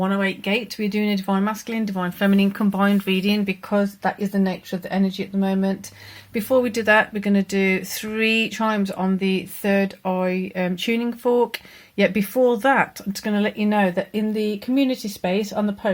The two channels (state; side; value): identical; both; correlation 1.00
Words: Gate. We're doing a Divine Masculine, Divine Feminine combined reading because that is the nature of the energy at the moment. Before we do that, we're going to do 3 chimes on the third eye tuning fork. Yet before that, I'm just going to let you know that in the community space on the